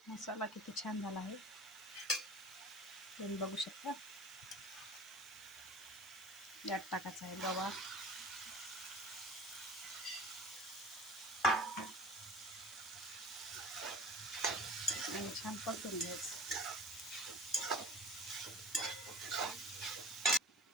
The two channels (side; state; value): both; normal; correlation 0.39